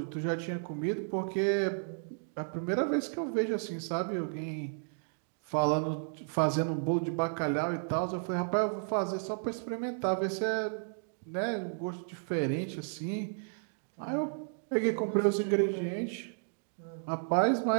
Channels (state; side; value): silent; left; digital silence